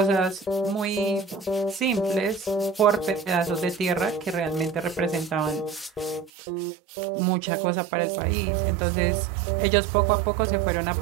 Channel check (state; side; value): drops out; left; at 6.3 s